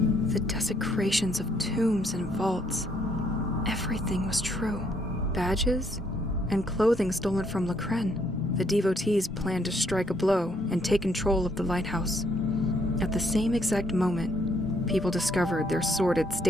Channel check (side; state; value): both; normal; correlation 0.70